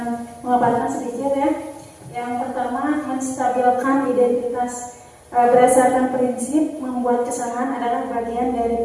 memaparkan sedikit ya. Yang pertama, menstabilkan identitas. Berdasarkan prinsip membuat kesalahan adalah bagian dari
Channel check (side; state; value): both; identical; correlation 1.00